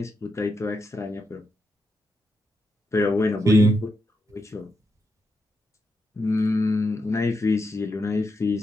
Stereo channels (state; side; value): normal; both; correlation 0.84